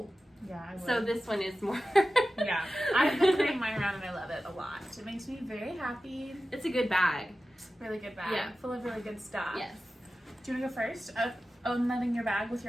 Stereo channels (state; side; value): normal; both; correlation 0.94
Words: Yeah, I would. So this one is more... Yeah. I've been carrying mine around and I love it a lot. It makes me very happy. It's a good bag. Really good bag. Yeah. Full of really good stuff. Yes. Do you want to go first? Unloading your bag with